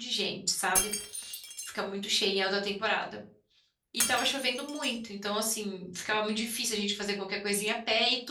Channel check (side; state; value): both; identical; correlation 1.00